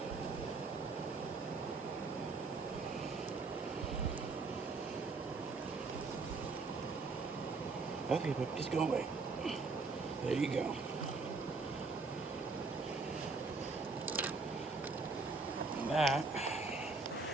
Okay, but just go away. There you go. And that,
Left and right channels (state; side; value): quieter; left; 4.0 dB